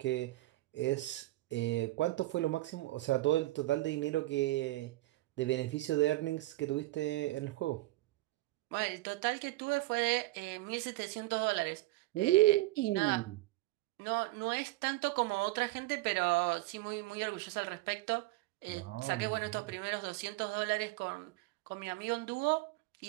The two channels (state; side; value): quieter; left; 19.1 dB